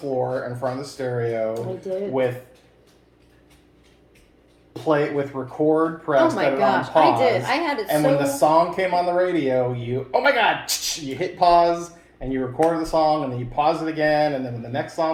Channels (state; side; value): identical; both; correlation 1.00